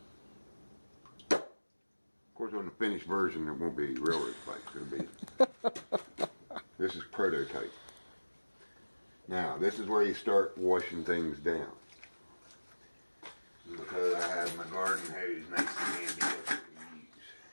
Of course, on the finished version, there won't be railroad spikes. It'll be. This is prototype. Now, this is where you start washing things down. Because I have my garden hose nice and handy that I can use.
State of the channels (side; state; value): both; inverted; correlation -1.00